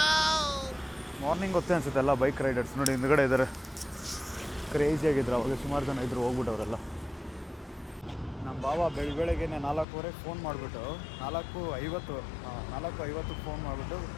ಮಾರ್ನಿಂಗ್ ಗೊತ್ತೇ ಅನಿಸುತ್ತೆ ಎಲ್ಲ ಬೈಕ್ ರೈಡರ್ಸ್ ನೋಡಿ ಹಿಂದ್ಗಡೆ ಇದ್ದಾರೆ. ಕ್ರೇಜಿಯಾಗಿದ್ರು ಅವಾಗ, ಸುಮಾರು ಜನ ಇದ್ದರು, ಹೋಗ್ಬಿಟ್ಟವರೆಲ್ಲ. ನಮ್ಮ ಬಾವ ಬೆಳಗ್ಗೆಗೆ 4:15 ಫೋನ್ ಮಾಡಿಬಿಟ್ಟು 4:50 ಫೋನ್ ಮಾಡಿಬಿಟ್ಟು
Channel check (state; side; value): drops out; right; at 9.9 s